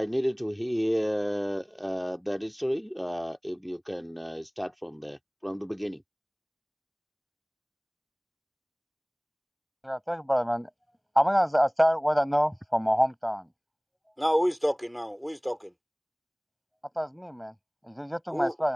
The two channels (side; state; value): both; identical; correlation 1.00